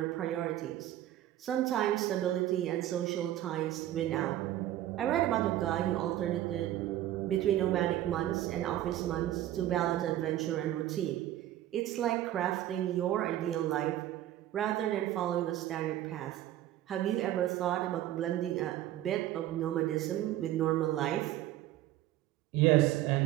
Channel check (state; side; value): quieter; left; 13.5 dB